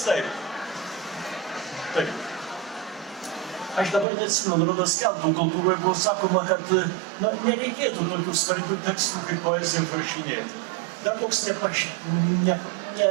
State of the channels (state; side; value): drops out; left; at 4.0 s